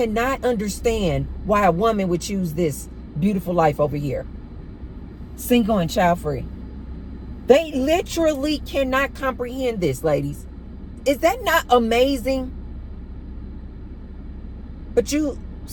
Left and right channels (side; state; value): both; identical; correlation 1.00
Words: understand why a woman would choose this beautiful life over here, single and child free. They literally cannot comprehend this, ladies. Is that not amazing? But